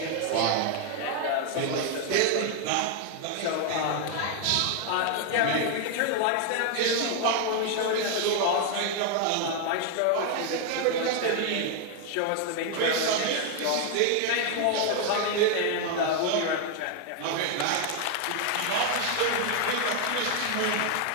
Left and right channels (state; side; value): different; both; correlation 0.01